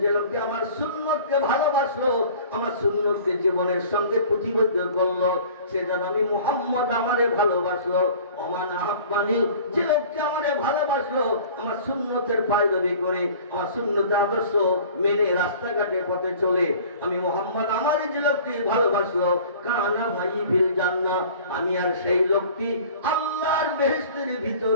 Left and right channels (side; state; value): both; inverted; correlation -0.46